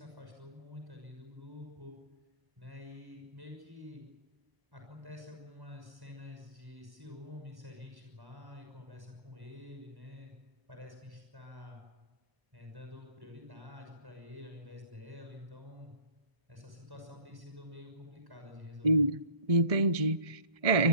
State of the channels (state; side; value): late; left; 1.1 ms